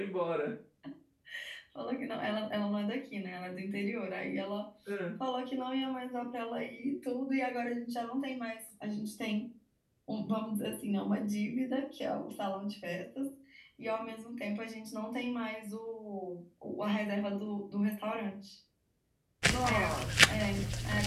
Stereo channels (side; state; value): both; identical; correlation 1.00